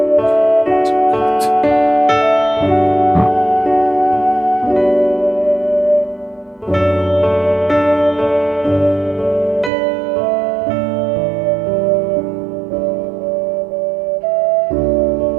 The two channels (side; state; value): left; drops out; at 9.7 s